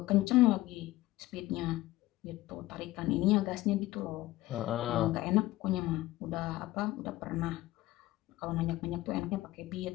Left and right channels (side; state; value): right; quieter; 17.1 dB